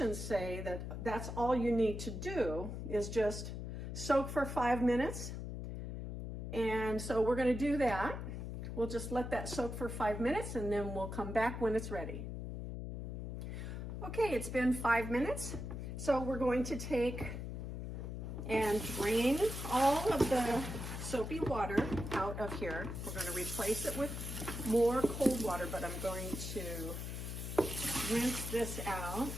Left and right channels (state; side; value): noise; left; hum, 6 dB below the sound